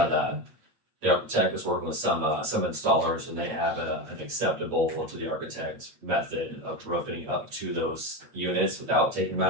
the architect was working with some installers and they have an acceptable to the architect method of roofing up to those units without taking them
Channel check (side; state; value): left; late; 8.5 ms